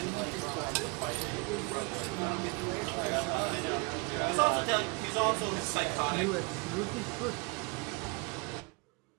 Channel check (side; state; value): left; quieter; 31.6 dB